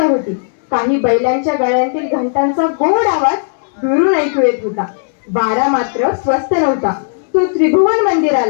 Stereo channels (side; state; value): right; silent; digital silence